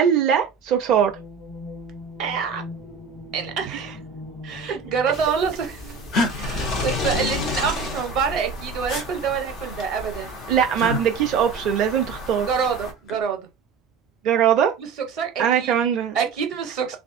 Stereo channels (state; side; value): quieter; left; 5.8 dB